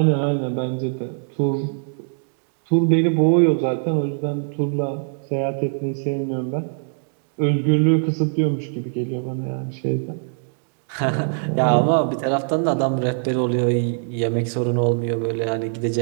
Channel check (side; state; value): left; silent; digital silence